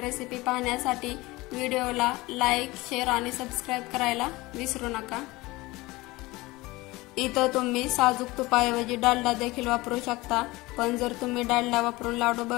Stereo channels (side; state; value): right; quieter; 21.0 dB